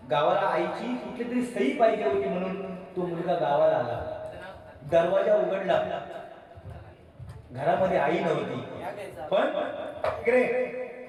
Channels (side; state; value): both; identical; correlation 1.00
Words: गावाला आईची कुठली तरी सही पाहिजे होती म्हणून तो मुलगा गावाला आला. दरवाजा उघडला. घरामध्ये आई नव्हती. पण इकडे